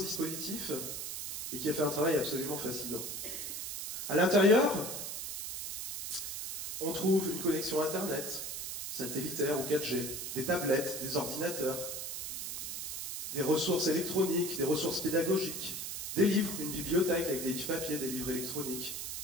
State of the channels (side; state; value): right; noise; hiss, 5 dB below the sound